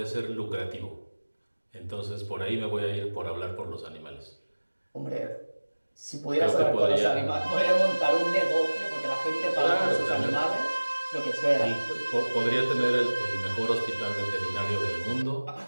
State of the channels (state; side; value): inverted; both; correlation -1.00